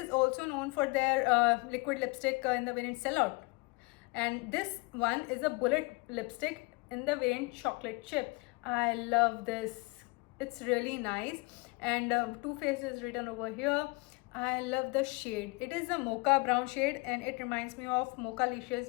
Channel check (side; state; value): right; quieter; 26.7 dB